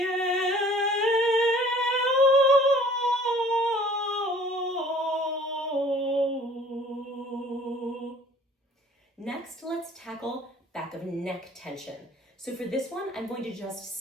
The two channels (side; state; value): both; normal; correlation 0.52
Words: Next, let's tackle back of neck tension. So for this one, I'm going to just